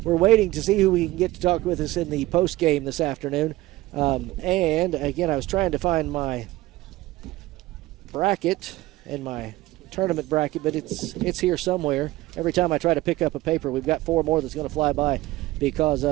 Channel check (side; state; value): left; quieter; 17.7 dB